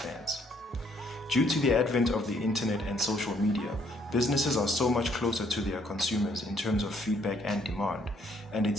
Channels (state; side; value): normal; both; correlation 0.67